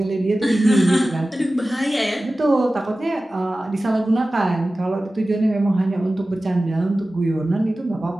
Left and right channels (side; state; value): both; normal; correlation 0.96